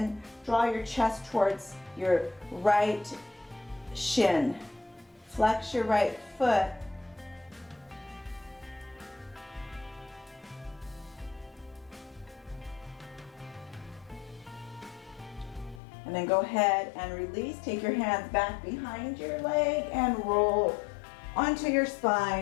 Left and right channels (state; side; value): drops out; right; at 15.8 s